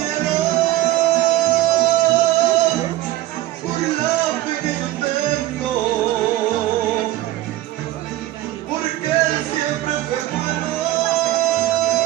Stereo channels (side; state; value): left; quieter; 15.7 dB